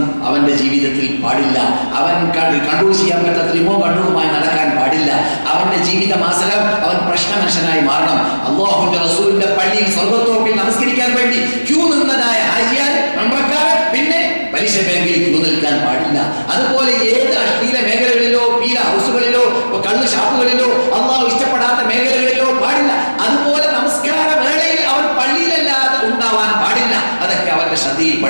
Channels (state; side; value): inverted; both; correlation -1.00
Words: അവന്റെ ജീവിതത്തിൽ പാടില്ല. അവൻ കൺട്രോൾ ചെയ്യാൻ പറ്റാത്ത റിമോട്ട് കൺട്രോളുമായി നടക്കാൻ പാടില്ല. അവന്റെ ജീവിത മാസകം അവൻ പ്രശ്ന മനുഷ്യനായി മാറണം. അല്ലാഹുവിന്റെ റസൂലിന്റെ പള്ളിയിൽ സ്വർഗ്ഗത്തോപ്പിൽ നമസ്കരിക്കാൻ വേണ്ടി ക്യൂ നിന്നതായ ഹാജിയാർ, ഉംറക്കാരൻ പിന്നെ പലിശ ബാങ്കിൽ ക്യൂ നിൽക്കാൻ പാടില്ല. അതുപോലെ ഏത് അശ്ലീല മേഖലകളിലോ പീല ഹൗസുകളിലോ കള്ള് ഷാപ്പുകളിലോ അല്ലാഹു ഇഷ്ടപ്പെടാത്ത മേഖലകളിലോ പാടില്ല. അതുപോലെ നമസ്കാര വേളയിൽ അവൻ പള്ളിയിലല്ലാതെ ഉണ്ടാവാൻ പാടില്ല. അതൊക്കെ അവന്റെ ശ്രദ്ധയിൽ